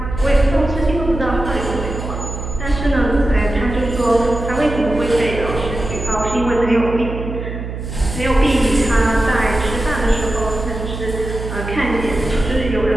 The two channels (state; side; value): noise; right; hum, 7 dB below the sound